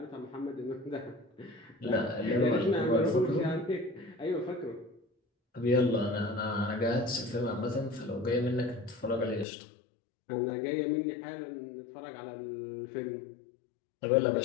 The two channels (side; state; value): right; drops out; at 9.5 s